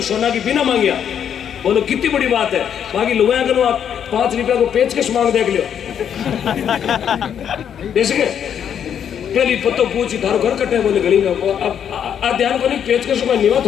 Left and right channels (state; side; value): quieter; right; 8.7 dB